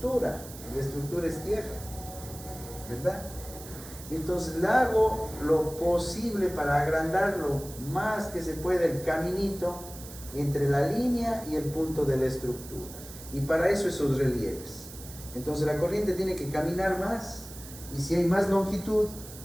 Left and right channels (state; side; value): noise; right; hiss, 15 dB below the sound